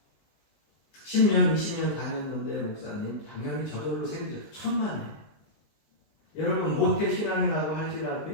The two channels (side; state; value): right; late; 19 ms